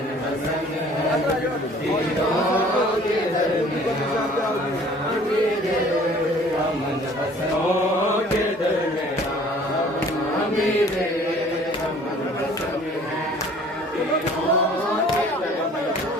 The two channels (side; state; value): both; normal; correlation 0.52